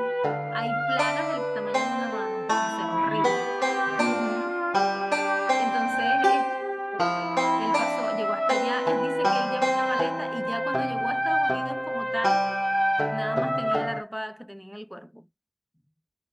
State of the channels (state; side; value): identical; both; correlation 1.00